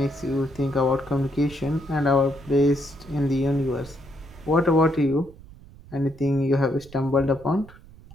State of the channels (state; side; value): noise; right; rumble, 20 dB below the sound